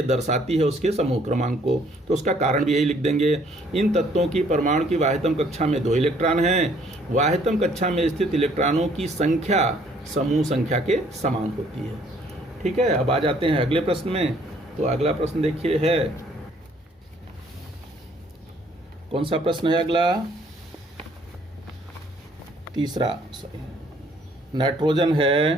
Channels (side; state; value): both; normal; correlation 0.62